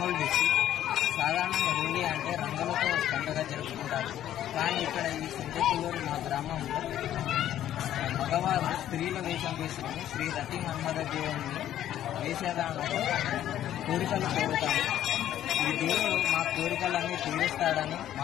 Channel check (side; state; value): right; quieter; 11.8 dB